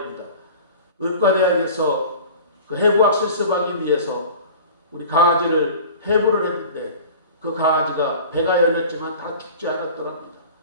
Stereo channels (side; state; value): both; inverted; correlation -0.41